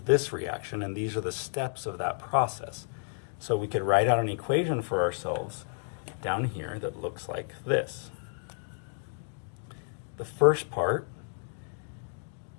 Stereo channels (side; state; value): right; silent; digital silence